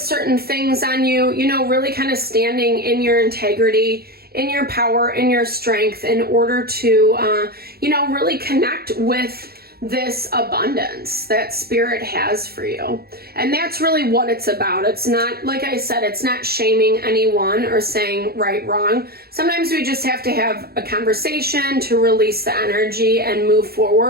things on you, you know, really kind of standing in your integrity, in your power, in your strength in order to, you know, really connect with this abundance that Spirit has for you. And that's really what it's about. It's not, like I said, it's not shaming anyone or saying right, wrong. Sometimes we just have to have a conversation to release the energy and move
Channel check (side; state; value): left; late; 0.45 ms